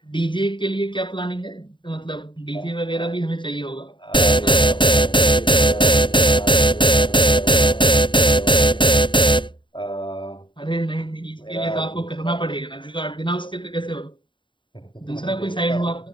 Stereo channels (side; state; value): right; late; 0.23 ms